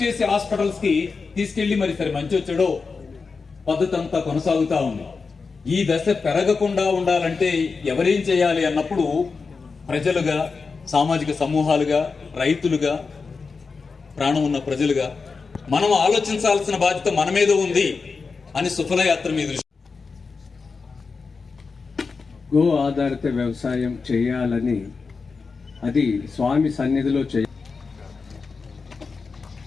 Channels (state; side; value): quieter; right; 4.7 dB